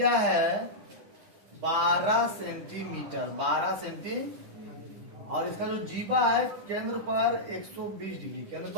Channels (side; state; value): left; late; 10 ms